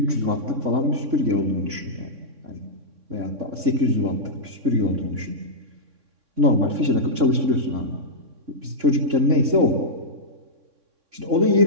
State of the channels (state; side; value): late; left; 3.6 ms